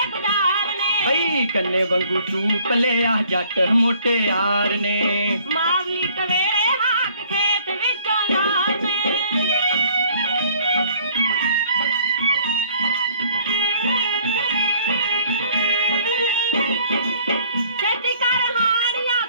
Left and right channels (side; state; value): both; inverted; correlation -0.58